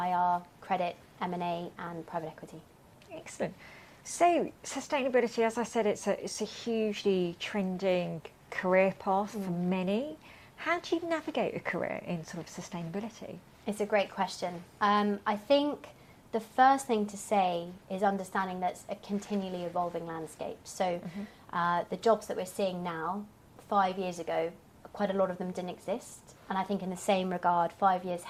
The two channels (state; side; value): identical; both; correlation 1.00